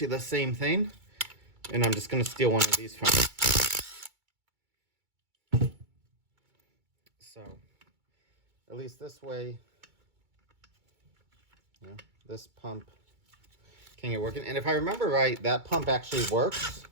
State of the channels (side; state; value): left; late; 2.2 ms